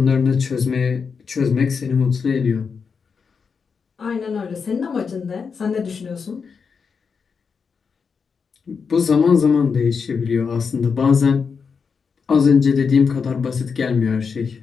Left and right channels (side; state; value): right; quieter; 5.7 dB